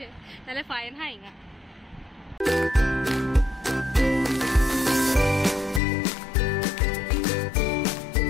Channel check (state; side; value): drops out; right; at 5.8 s